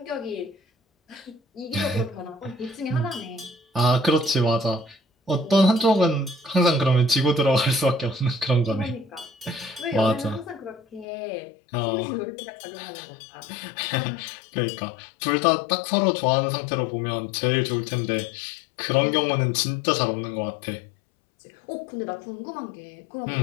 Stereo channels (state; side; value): drops out; right; at 11.1 s